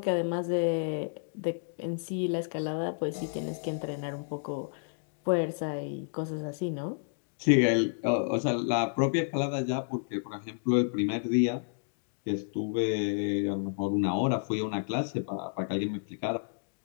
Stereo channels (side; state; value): right; silent; digital silence